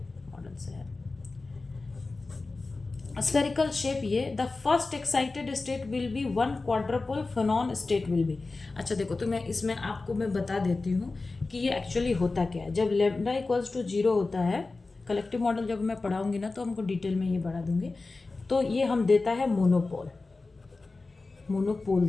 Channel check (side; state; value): right; quieter; 3.6 dB